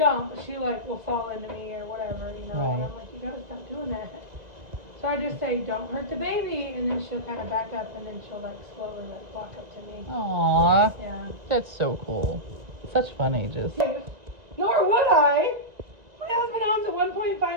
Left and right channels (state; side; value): late; left; 1.9 ms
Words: but she like will fall into me or whatever, you know. Right. And I'm like, you gotta stop doing that. So I just say, don't hurt the baby, and then she'll kind of back up, and then she'll like slowly like walk up to me. Aww. Yeah. That's so cool. Such fun ages. Nor would I. My husband owns a